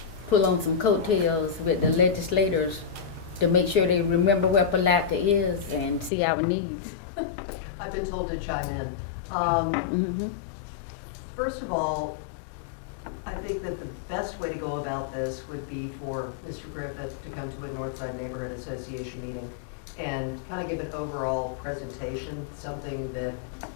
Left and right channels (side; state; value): right; drops out; at 6.1 s